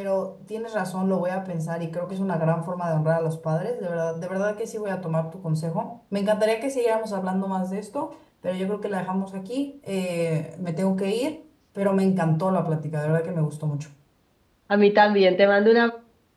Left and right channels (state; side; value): identical; both; correlation 1.00